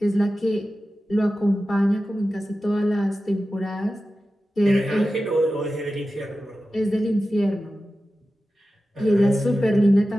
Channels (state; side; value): normal; both; correlation 0.94